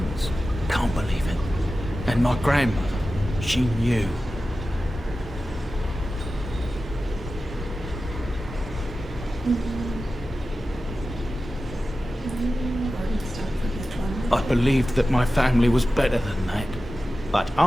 Can't believe it. And my grandmother, she knew. I believed that my family was better than that. But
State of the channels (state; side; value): normal; both; correlation 0.94